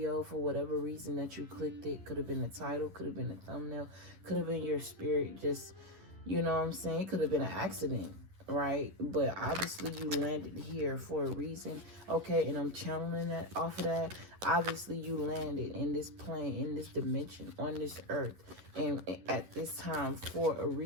for whatever reason that you clicked it. Could have been the title, could have been the thumbnail, could have been your spirit just, you know what I'm saying? It could have been an accident, right? But obviously you landed here for a reason, okay? And I'm channeling that off of that. Obviously you landed in this plane, in this dimension, on this earth, and at this time for a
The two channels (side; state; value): left; late; 11 ms